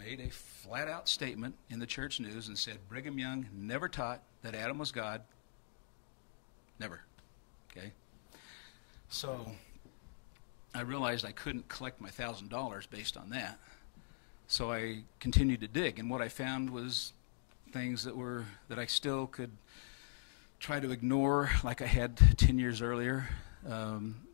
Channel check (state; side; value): silent; right; digital silence